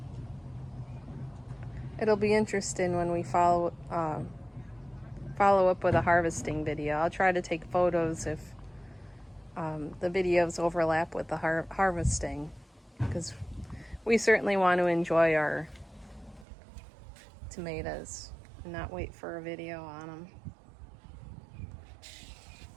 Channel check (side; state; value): left; drops out; at 16.4 s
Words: it'll be interesting when we follow up with a harvesting video. I'll try to take photos if the videos overlap with the harvesting, because we certainly want to enjoy our tomatoes and not wait for a video on them.